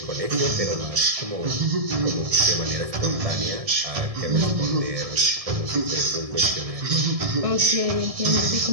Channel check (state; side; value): late; left; 1.7 ms